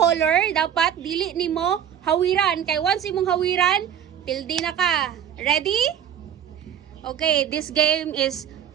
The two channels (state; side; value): quieter; left; 9.3 dB